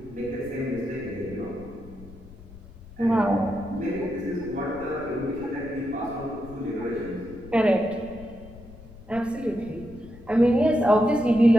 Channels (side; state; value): left; noise; rumble, 19 dB below the sound